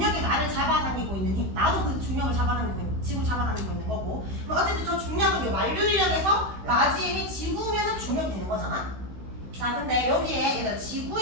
나를 잡아당기고 있는 힘, 나도 그 중력을 잡아당기고 있는, 지구를 잡아당기고 있는 거고. 어쨌든 저 중력은 요 만류인력에서 라지 m이 지구면은 중력이 되는 거잖아. 자, 근데 여기에 얘들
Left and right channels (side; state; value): left; late; 16 ms